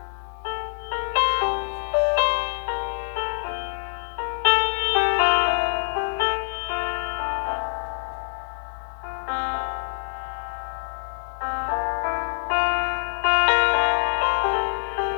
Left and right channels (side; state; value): right; silent; digital silence